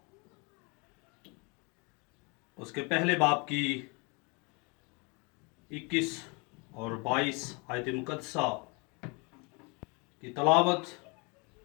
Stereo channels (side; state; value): right; quieter; 30.7 dB